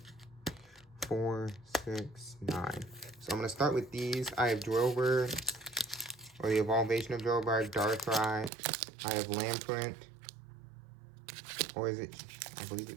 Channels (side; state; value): left; drops out; at 8.5 s